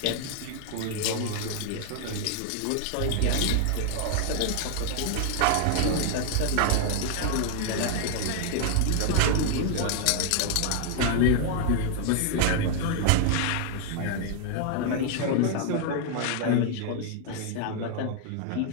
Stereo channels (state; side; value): different; both; correlation 0.00